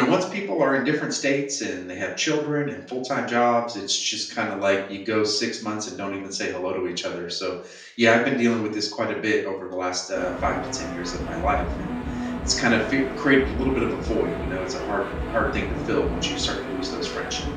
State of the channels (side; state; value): both; identical; correlation 1.00